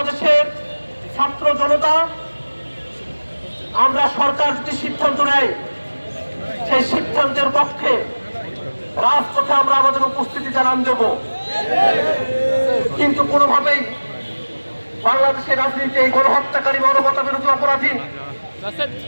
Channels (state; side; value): inverted; both; correlation -1.00